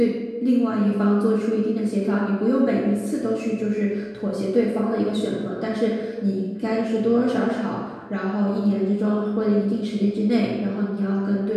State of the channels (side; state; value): both; identical; correlation 1.00